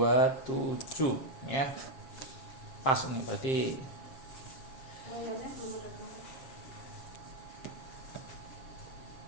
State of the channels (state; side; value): late; right; 7.6 ms